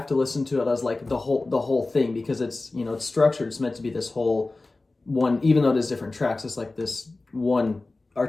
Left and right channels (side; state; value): right; quieter; 3.2 dB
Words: to listen to it as like the whole thing, because it's it's structured. It's meant to be this whole one, even though it is different tracks. It's like this one